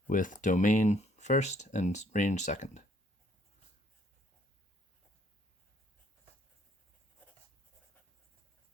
with domain first and range second.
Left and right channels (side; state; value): both; normal; correlation 0.65